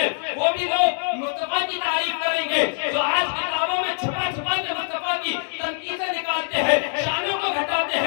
وہ بھی لوگ مصطفیٰ کی تعریف کریں گے جو آج کتابوں میں چھپا چھپا کے مصطفیٰ کی تنقیدیں نکالتے ہیں, شانوں کو گھٹاتے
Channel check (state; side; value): silent; right; 63 dB below the other